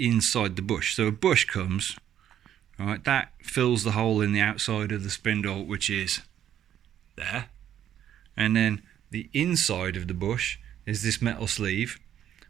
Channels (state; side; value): quieter; left; 10.5 dB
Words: the bush. So a bush comes, right, that fills the hole in the outside of the spindle, which is there. And then the inside of the bush is this metal sleeve,